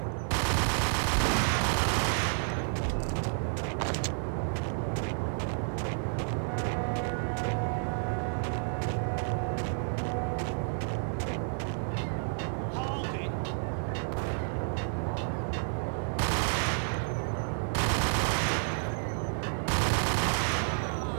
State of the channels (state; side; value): silent; left; digital silence